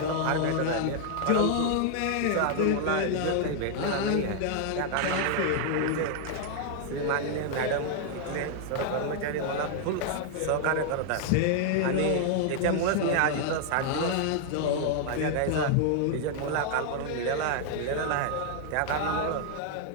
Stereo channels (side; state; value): both; different; correlation 0.00